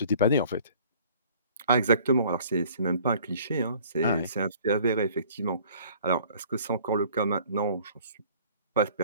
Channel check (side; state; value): both; inverted; correlation -0.53